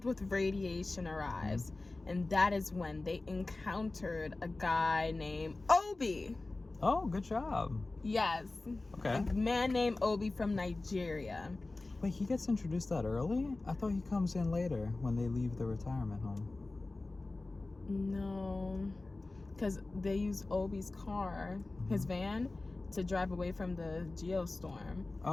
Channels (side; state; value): right; quieter; 3.2 dB